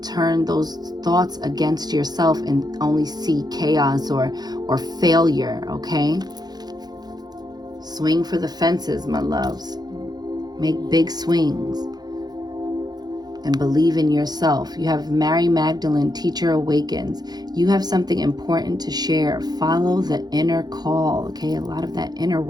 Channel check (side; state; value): left; late; 0.19 ms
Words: turn those thoughts against yourself and only see chaos or failure, okay? Swing for the fences, my loves. Make big swings. And believe in yourself. You have Mary Magdalene, teacher awakens. You have something important to share. Follow the inner call, okay? A lot of that inner